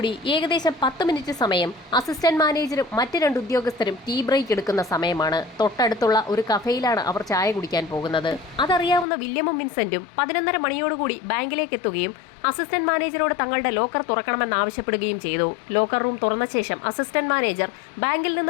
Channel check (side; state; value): right; drops out; at 9.1 s